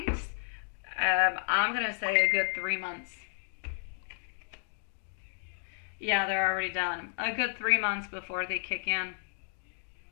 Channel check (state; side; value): silent; right; digital silence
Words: I'm going to say a good 3 months. Yeah, they're already done. A good 3 months before they kick in.